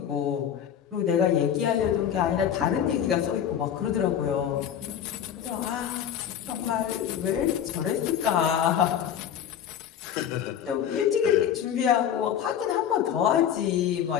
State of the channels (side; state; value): right; quieter; 9.3 dB